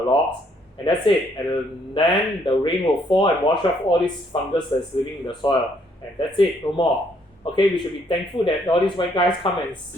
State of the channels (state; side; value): normal; both; correlation 0.69